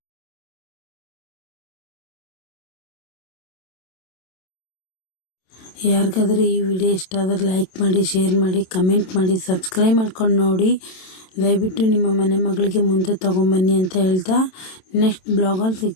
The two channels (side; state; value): right; late; 27 ms